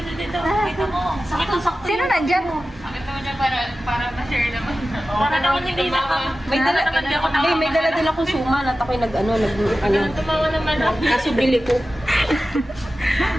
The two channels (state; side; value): normal; both; correlation 0.94